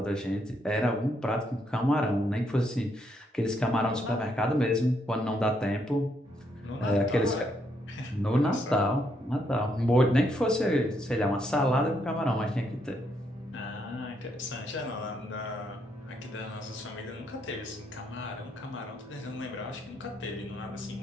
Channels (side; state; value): both; normal; correlation 0.75